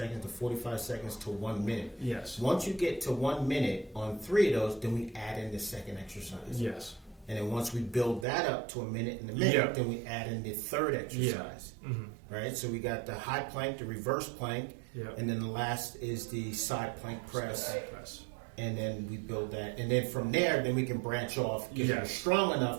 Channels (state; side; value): drops out; left; at 8.2 s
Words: to 45 seconds to 1 minute. Yes. Once you get to 1 minute on 3 of those, then we add in the second exercise. Yes. And then once we build that up to a minute and a minute, then we add in the third exercise. Right? So we got the high plank, the reverse plank, and then the last is the side plank press. And then we build that. And then from there, then we can branch off. If you're strong